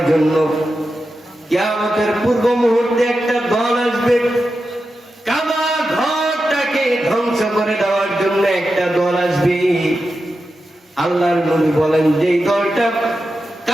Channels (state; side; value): normal; both; correlation 0.90